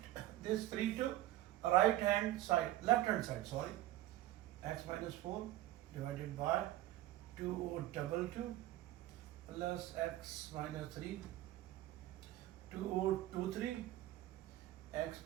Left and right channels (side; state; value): left; quieter; 15.1 dB